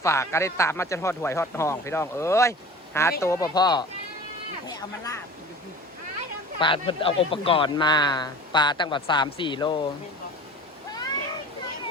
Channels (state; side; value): normal; both; correlation 0.39